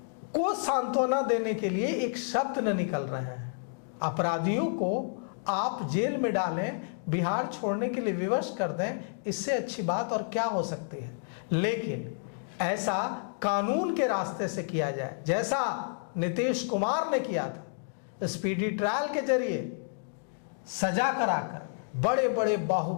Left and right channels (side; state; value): right; silent; digital silence